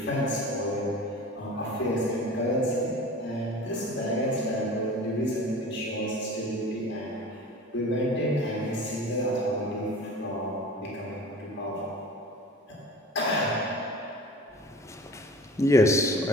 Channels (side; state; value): both; normal; correlation 0.39